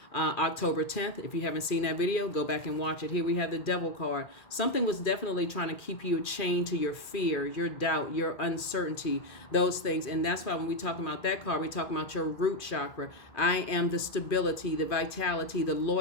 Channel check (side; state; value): right; late; 2.4 ms